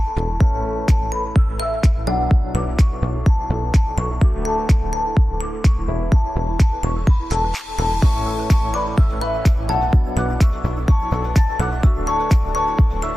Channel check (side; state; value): both; normal; correlation 0.95